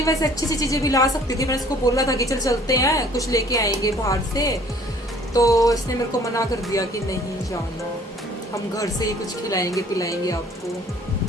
वैसे अच्छी सी चीजें भी ला सकती थी। मैंने इसको बोला था कि चल चलते हैं, कुछ लेके आएंगे बाहर से, तो इसने मेरे को मना कर दिया कि नहीं जाना, हम घर से ही कुछ खिलाएंगे पिलाएंगे आपको।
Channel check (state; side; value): normal; both; correlation 0.55